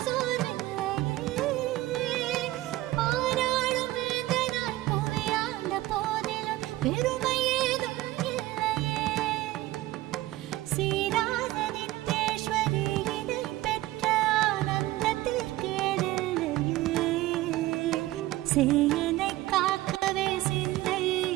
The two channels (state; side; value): quieter; left; 17.1 dB